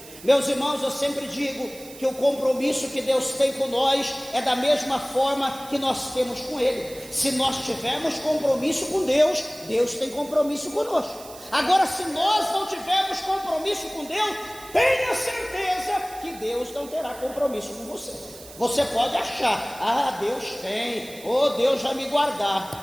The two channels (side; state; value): right; noise; hiss, 18 dB below the sound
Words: Meus irmãos, eu sempre digo que o compromisso que Deus tem com nós é da mesma forma que nós temos com Ele. Se nós tivermos compromisso com Deus, Deus tem compromisso conosco. Agora, se nós não tivermos compromisso com Deus, tenha certeza que Deus não terá compromisso com você. Você pode achar, Deus tem, Deus vai me